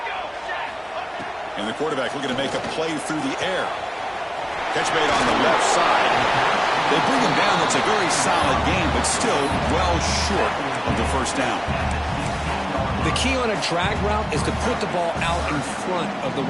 And the quarterback looking to make a play through the air. Catch made on the left side. They bring him down. That's a very solid game, but still well short of the first down. The key on a drag route is to put the ball out in front of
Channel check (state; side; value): identical; both; correlation 1.00